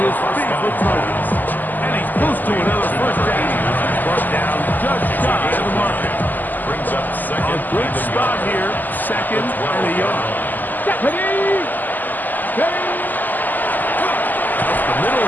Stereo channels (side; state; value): right; late; 0.085 ms